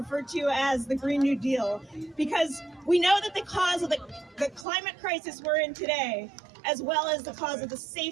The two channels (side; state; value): left; drops out; at 4.7 s